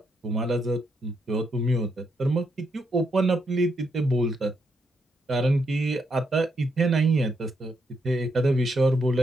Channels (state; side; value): normal; both; correlation 0.78